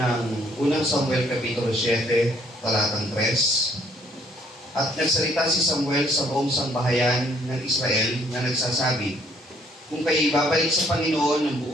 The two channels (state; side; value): normal; both; correlation 0.64